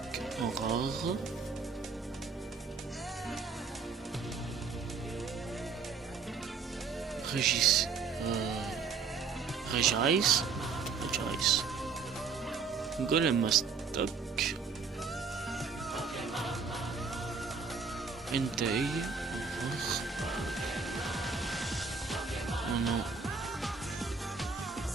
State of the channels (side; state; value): left; quieter; 5.2 dB